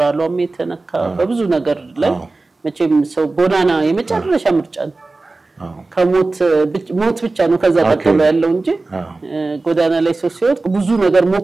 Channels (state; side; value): quieter; left; 3.4 dB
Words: የተነካ በብዙ ነገር ላይ መቼም ሰው ጎዳና የመጨረሻ ምርጫ ነው ከሞት ብቻ ነው ከዛ ቀጥሎ ያለው እንጂ ጎዳና ላይ ሰው ሲወጥ ብዙ ነገር